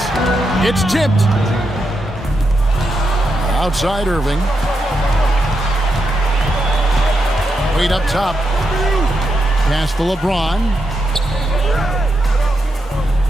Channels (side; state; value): both; normal; correlation 0.84